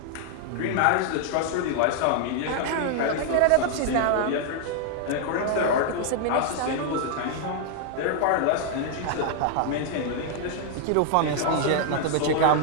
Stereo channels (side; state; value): both; different; correlation 0.00